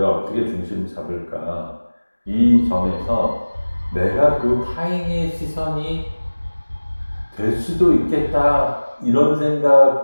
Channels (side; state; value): both; inverted; correlation -1.00